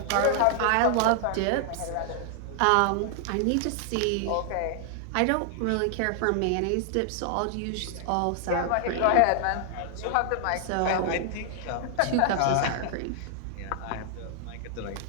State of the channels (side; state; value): both; different; correlation 0.00